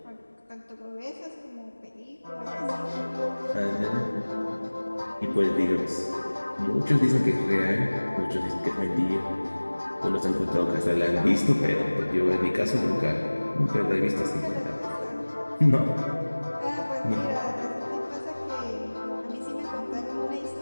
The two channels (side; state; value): both; inverted; correlation -1.00